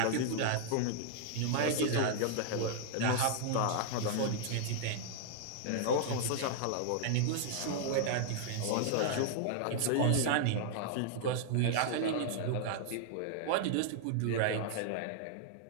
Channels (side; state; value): both; different; correlation -0.01